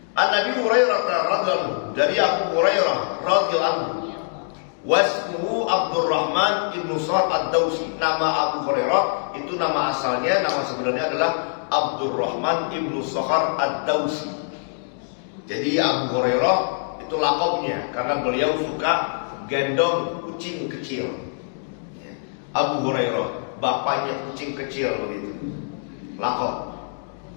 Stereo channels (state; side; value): silent; right; digital silence